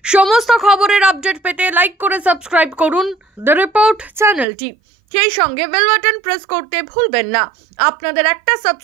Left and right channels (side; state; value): left; drops out; at 4.5 s